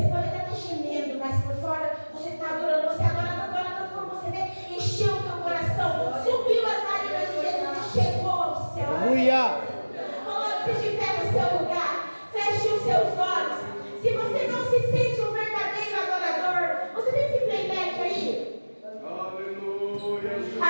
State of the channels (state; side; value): inverted; both; correlation -1.00